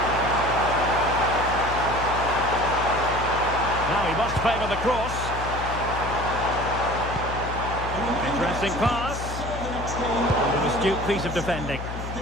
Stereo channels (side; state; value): left; noise; hum, 7 dB below the sound